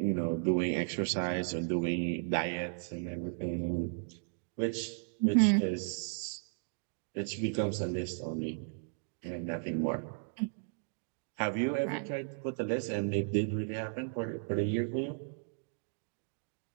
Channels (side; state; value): left; silent; digital silence